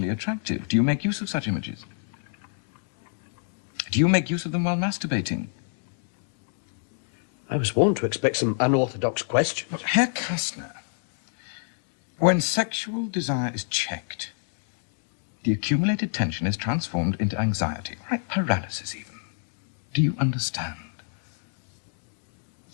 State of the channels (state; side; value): silent; right; digital silence